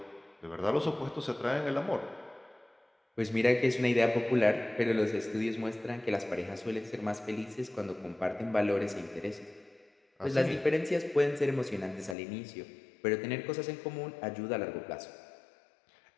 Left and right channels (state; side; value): drops out; right; at 12.2 s